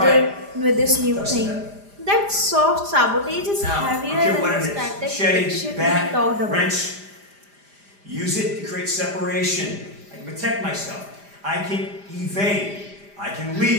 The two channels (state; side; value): late; left; 5.0 ms